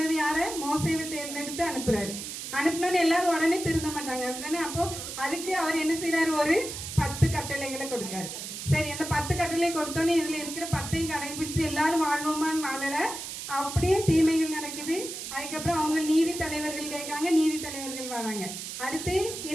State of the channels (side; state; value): right; noise; hiss, 8 dB below the sound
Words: யார, மோசேவை தேர்ந்தெடுத்து அனுப்புறாரு. அனுப்பினோன்னு எல்லாரும் உடனே திருந்த மாட்டாங்க அப்படித்தானே. அப்போ அதுக்கு அவர் என்ன செய்யறாரு, ஒரு 10 கட்டளைகளை கொடுக்காரு. சரி, அந்த 10 கட்டளை கொடுத்தோன்னே இதுல இருக்கிற 10ஐயும் கடைபிடித்து எல்லாரும் வாழ்வோமான்னு வாழல, அப்படியே தீமைகள் நடக்குது. அதுக்கப்புறம் அவங்க நீதி தலைவர்கள் கேட்காங்க, நீதி தலைவர்கள் வராங்க. அடுத்து